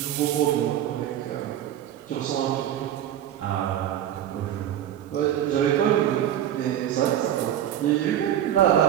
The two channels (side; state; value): left; quieter; 11.0 dB